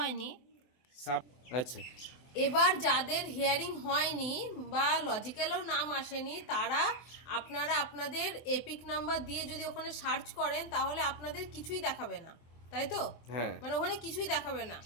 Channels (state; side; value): late; right; 24 ms